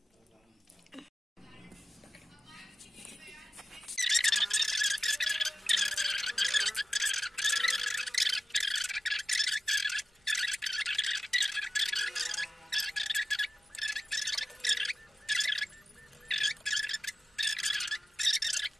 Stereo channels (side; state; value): both; normal; correlation 0.93